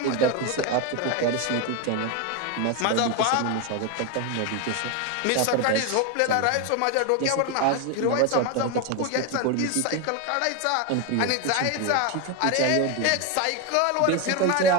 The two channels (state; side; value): different; both; correlation 0.02